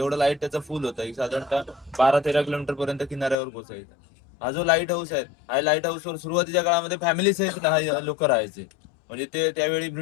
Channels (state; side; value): drops out; right; at 3.4 s